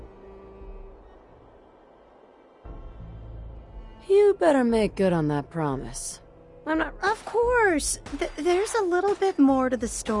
You better make good on that promise. I'm not... Of course! There's a little bit more to the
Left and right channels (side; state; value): both; identical; correlation 1.00